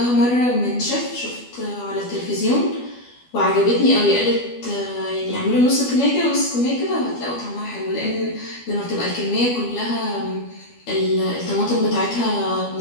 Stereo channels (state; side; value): late; right; 12 ms